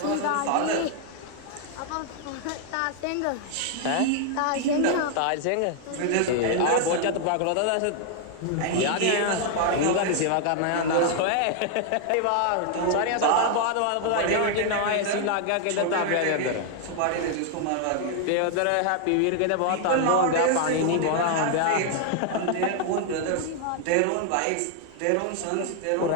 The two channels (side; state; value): both; different; correlation 0.00